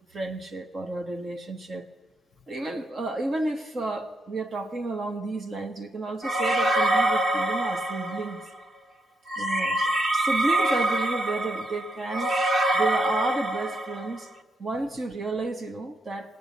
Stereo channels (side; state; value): both; normal; correlation 0.80